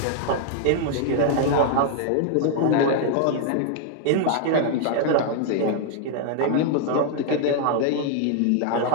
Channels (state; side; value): different; both; correlation 0.00